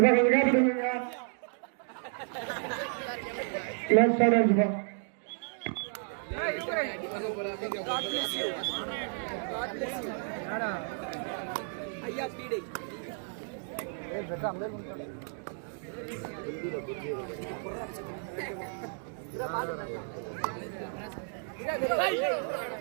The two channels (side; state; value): left; silent; 56 dB below the other